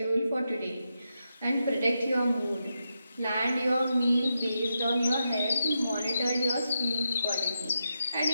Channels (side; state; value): both; inverted; correlation -0.86